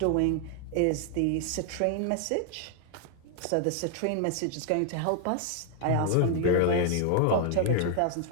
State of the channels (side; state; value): both; different; correlation 0.00